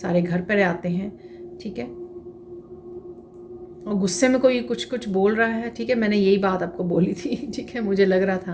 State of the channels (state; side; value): identical; both; correlation 1.00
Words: घर पर आते हैं, ठीक है। और गुस्से में कोई कुछ कुछ बोल रहा है, ठीक है। मैंने यही बात आपको बोली थी, ठीक है, मुझे लग रहा